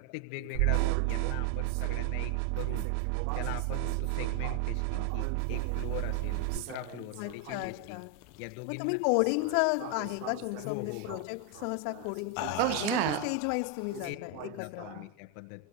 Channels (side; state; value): both; different; correlation 0.01